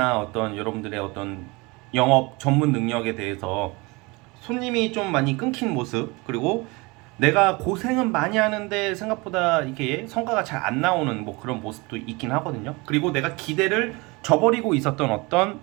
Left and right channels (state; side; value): quieter; left; 25.6 dB